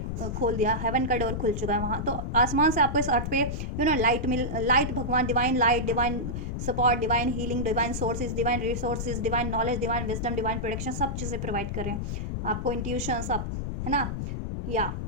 खोल दिया, हेवन का डोर खुल चुका है वहाँ। तो आसमान से आपको इस अर्थ पे लाइट, भगवान, divine light, divine support, divine healing, divine sources, divine resources, divine knowledge, divine wisdom, divine protection, सब चीज़ें प्रोवाइड कर रहे हैं आपको, इंट्यूशन सब, है ना। या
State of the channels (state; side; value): noise; left; rumble, 3 dB below the sound